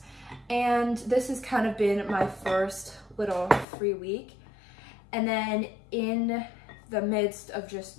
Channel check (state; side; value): drops out; right; at 3.7 s